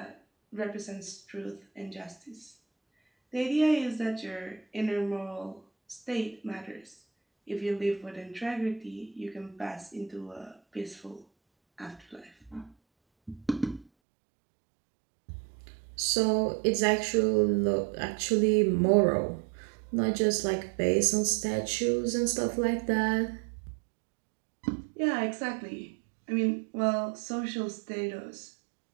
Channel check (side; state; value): left; drops out; at 13.9 s